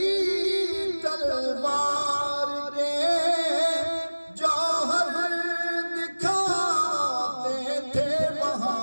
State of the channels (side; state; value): both; inverted; correlation -1.00